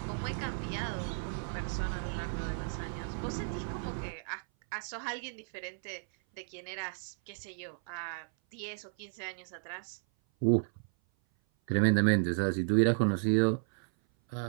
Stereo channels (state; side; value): silent; left; 55 dB below the other